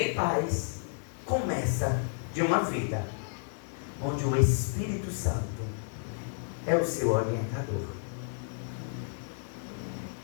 em paz começa de uma vida onde o Espírito Santo é o seu orientador.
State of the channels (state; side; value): silent; right; digital silence